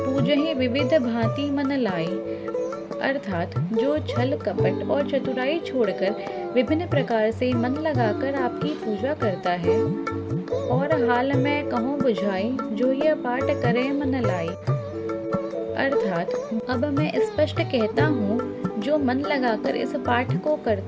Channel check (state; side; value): identical; both; correlation 1.00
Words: विविध भांति मन लाई। अर्थात जो छल कपट और चतुराई छोड़कर विभिन्न प्रकार से मन लगाकर आपकी पूजा करता है। और हाल में कहूँ बुझाई, जो यह पाठ करे मन लाई। अर्थात अब मैं स्पष्ट कहता हूँ, जो मन लगाकर इस पाठ को